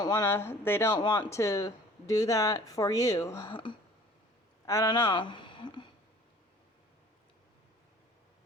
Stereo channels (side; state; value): both; normal; correlation 0.49